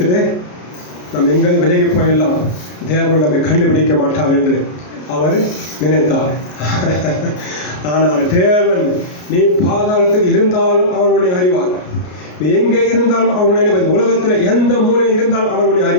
நம்ம எங்கே விலகி போயிடலாம், தேவன் நம்மை கண்டுபிடிக்க மாட்டார் என்று அவர் நினைத்தார். ஆனால் தேவன், நீ பாதாளத்தில் இருந்தாலும் அவர் உன்னை அறிவார், நீ எங்கே இருந்தாலும் அவர் உன்னை அறிவார், உலகத்தில் எந்த மூலையில் இருந்தாலும் அவர் உன்னை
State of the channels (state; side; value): late; right; 33 ms